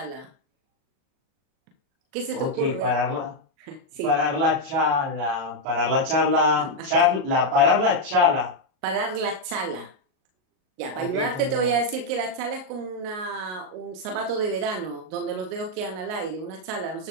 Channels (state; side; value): late; left; 38 ms